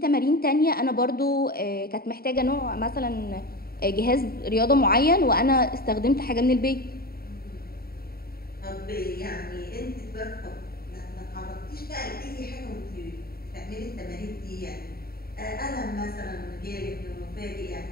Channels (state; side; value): late; right; 0.44 ms